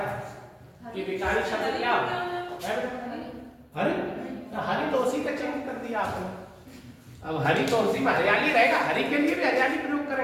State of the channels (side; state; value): both; identical; correlation 1.00